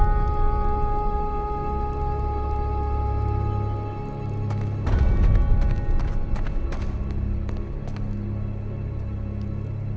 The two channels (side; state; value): both; identical; correlation 1.00